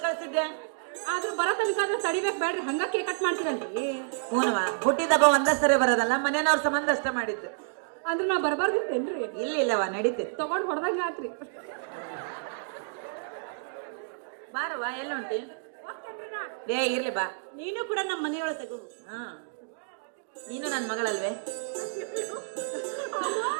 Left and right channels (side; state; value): left; silent; digital silence